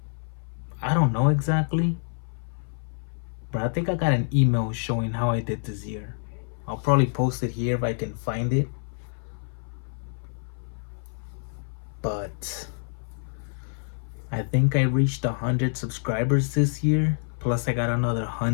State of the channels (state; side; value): silent; right; 58 dB below the other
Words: I don't know exactly, but I think I got an email showing how I did this year. I'll probably post it here if I can find it. But I think I reached 100 subscribers this year, plus I got another